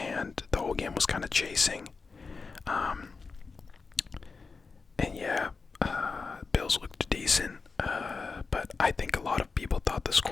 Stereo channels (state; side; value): quieter; right; 4.5 dB